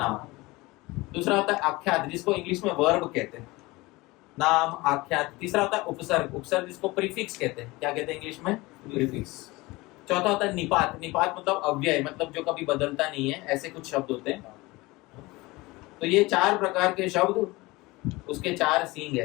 दूसरा होता है आख्यात, जिसको इंग्लिश में वर्ब कहते हैं, नाम आख्यात। तीसरा होता है उपसर्ग, उपसर्ग जिसको प्रीफिक्स कहते हैं, क्या कहते हैं इंग्लिश में? प्रीफिक्स। चौथा होता है निपात, निपात मतलब अव्यय, मतलब जो कभी बदलता नहीं है, ऐसे कुछ शब्द होते हैं। तो ये 4 प्रकार के शब्द, उसके 4 सींग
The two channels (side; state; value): right; quieter; 21.8 dB